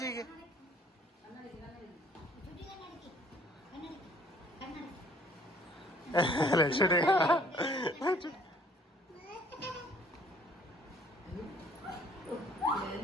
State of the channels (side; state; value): both; normal; correlation 0.58